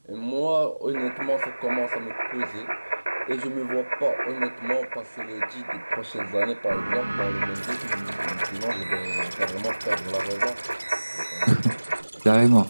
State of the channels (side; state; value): both; inverted; correlation -1.00